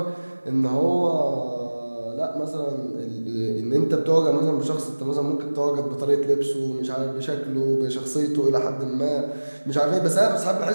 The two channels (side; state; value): both; inverted; correlation -1.00